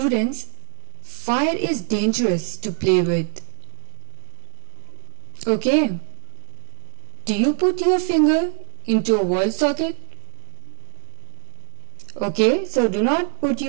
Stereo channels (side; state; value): left; silent; 63 dB below the other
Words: fire is dangerous to play with. Okay. Do you put your finger into a wall socket? Okay, so do not put